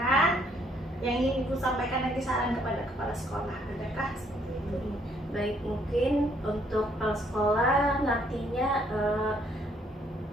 yang ingin ibu sampaikan nanti saran kepada kepala sekolah, adakah seperti itu? Baik, mungkin untuk kepala sekolah nantinya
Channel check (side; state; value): both; normal; correlation 0.67